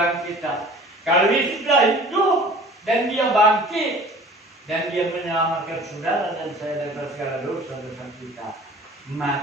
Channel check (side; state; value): both; normal; correlation 0.46